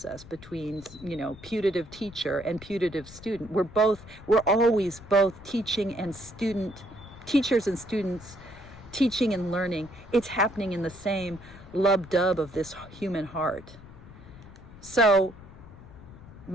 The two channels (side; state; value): left; noise; rumble, 18 dB below the sound